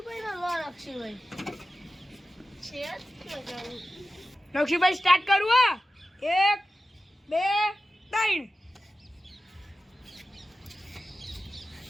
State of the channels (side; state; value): both; normal; correlation 0.94